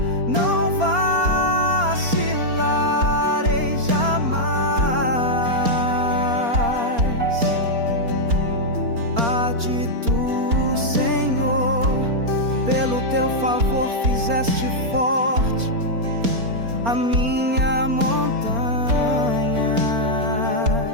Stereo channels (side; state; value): left; late; 4.3 ms